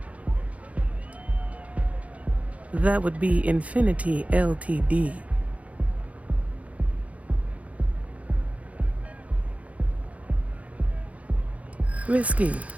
That would be Infinity Ltd. Risky,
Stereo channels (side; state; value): left; late; 0.066 ms